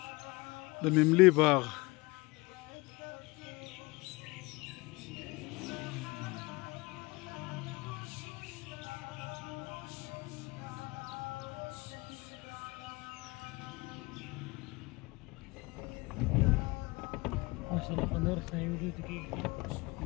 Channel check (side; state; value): right; quieter; 24.4 dB